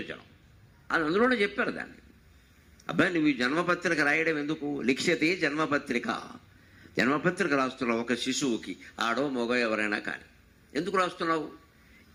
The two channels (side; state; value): both; identical; correlation 1.00